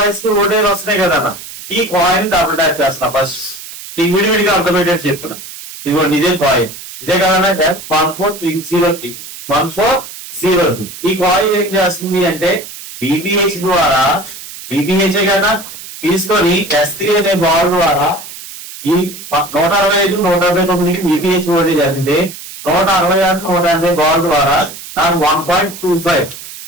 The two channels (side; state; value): right; noise; hiss, 13 dB below the sound